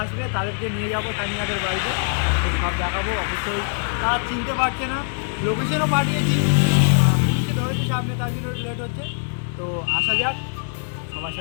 আসবে, তাদেরকে নিয়ে যাবো তানিয়াদের বাড়িতে, তো সব দেখাবো। অবশ্যই তারা চিনতে পারছে না, লোকেশনও পাঠিয়েছি, ধরেছি সামনে, তার জন্য লেট হচ্ছে। তো আসা যাক, সবার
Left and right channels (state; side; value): silent; right; 64 dB below the other